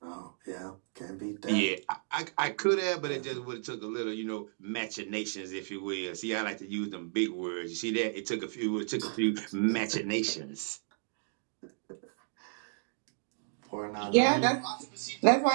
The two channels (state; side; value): silent; left; digital silence